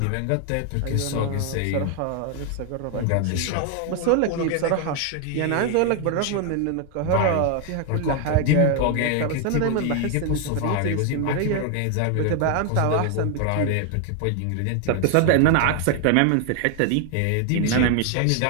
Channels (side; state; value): both; different; correlation 0.00